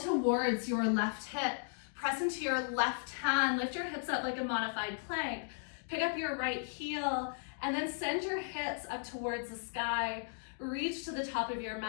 your left hip, press into your left hand, lift your hips up like a modified plank, pick up your right heel, and then send your hips up towards the sky. Reach to the top of your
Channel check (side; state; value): right; silent; digital silence